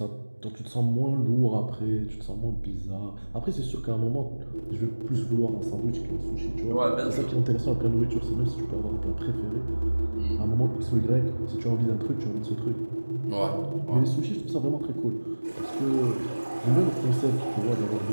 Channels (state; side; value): inverted; both; correlation -1.00